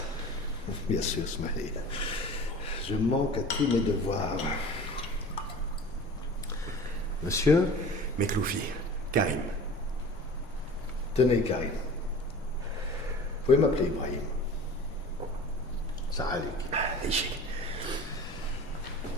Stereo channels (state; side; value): normal; both; correlation 0.40